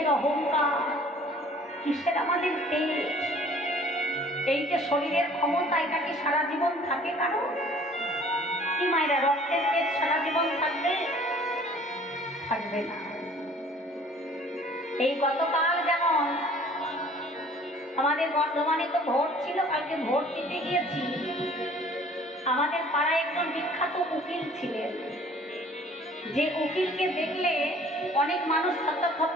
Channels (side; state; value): both; normal; correlation 0.52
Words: অহংকার, কিসের আমাদের তেজ? এই যে শরীরের ক্ষমতা, এটা কি সারা জীবন থাকে কারো? কি মায়েরা, রক্তের তেজ সারা জীবন থাকবে? থাকবে না। এই গতকাল যেমন আমাদের বর্ধমানে তো ভোট ছিল, কালকে ভোট দিতে গিয়েছি। আমাদের পাড়ায় একজন বিখ্যাত উকিল ছিলেন, যে উকিলকে দেখলে অনেক মানুষ থরথর